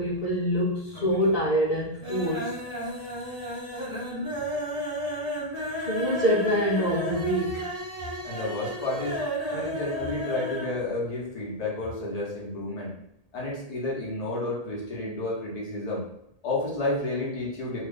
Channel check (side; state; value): right; late; 1.8 ms